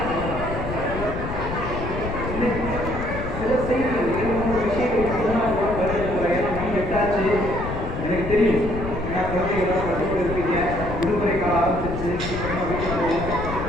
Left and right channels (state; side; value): noise; left; rumble, 6 dB below the sound